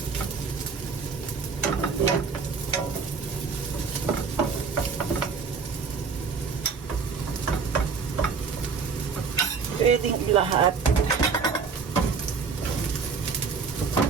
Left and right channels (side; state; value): left; quieter; 5.4 dB